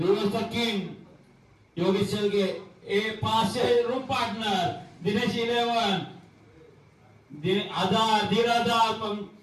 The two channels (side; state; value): both; identical; correlation 1.00